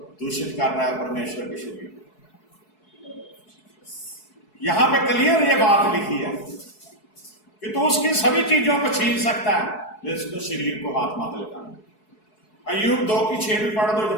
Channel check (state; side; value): late; right; 4.7 ms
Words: दूषित कर रहा है, परमेश्वर के शरीर को। यहां पे क्लियर ये बात लिखी है कि तू उसकी सभी चीजों को छीन सकता है, लेकिन उसके शरीर को हाथ मत लगाना। अय्यूब 2 की 6 भी पढ़ दो